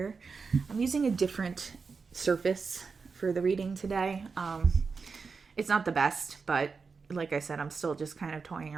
I'm using a different surface for the reading today. It's not the best, but like I said, I'm still just kind of toying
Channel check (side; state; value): left; quieter; 4.9 dB